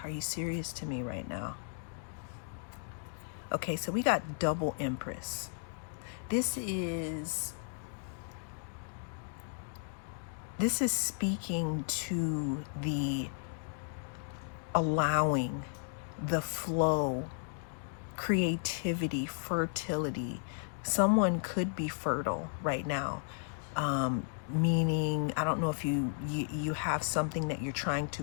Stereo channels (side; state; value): right; silent; digital silence